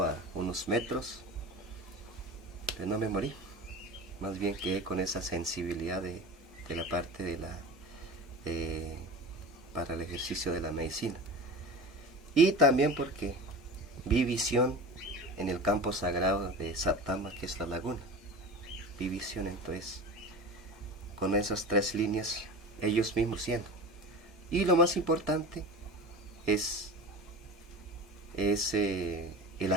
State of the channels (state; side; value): normal; both; correlation 0.32